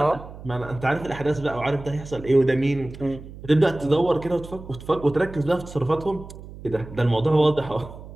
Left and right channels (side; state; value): right; noise; hum, 15 dB below the sound